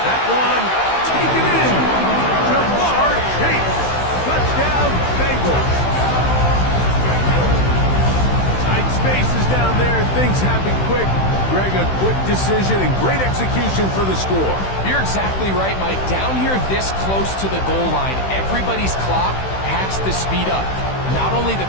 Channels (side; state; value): right; late; 16 ms